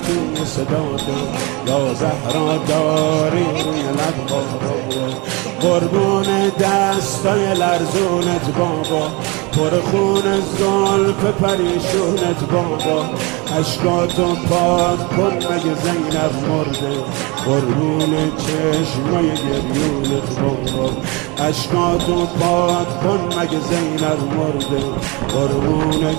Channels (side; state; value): left; quieter; 27.1 dB